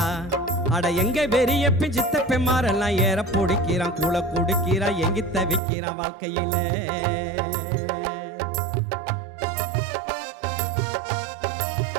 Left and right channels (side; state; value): left; drops out; at 5.6 s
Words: அட எங்க பெரியப்பன் சித்தப்பன் மாரெல்லாம் ஏற பிடிக்கிறான், கூழ குடிக்கிறான், எங்கி தவிக்கிறான் வாழ்க்கையில.